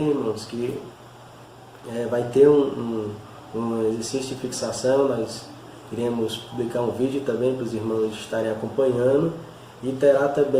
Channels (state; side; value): identical; both; correlation 1.00